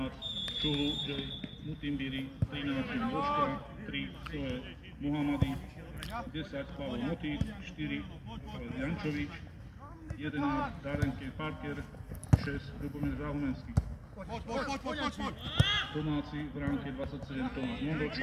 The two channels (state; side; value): identical; both; correlation 1.00